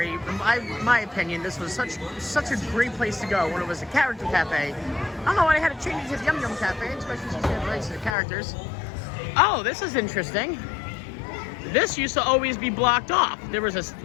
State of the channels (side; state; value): right; drops out; at 8.2 s